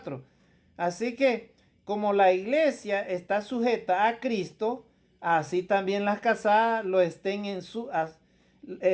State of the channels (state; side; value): identical; both; correlation 1.00